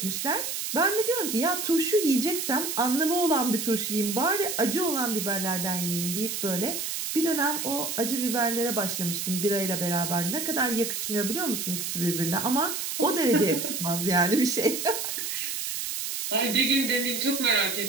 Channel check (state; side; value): noise; right; hiss, 3 dB below the sound